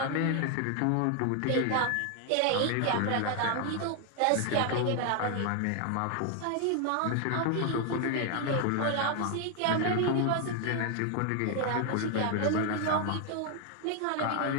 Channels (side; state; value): both; different; correlation 0.00